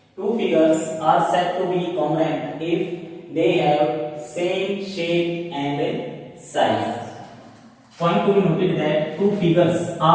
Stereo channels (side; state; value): both; identical; correlation 1.00